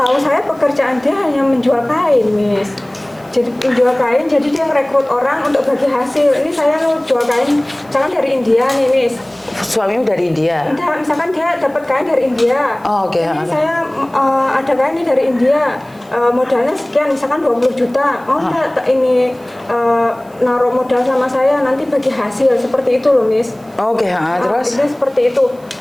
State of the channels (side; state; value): right; noise; hiss, 29 dB below the sound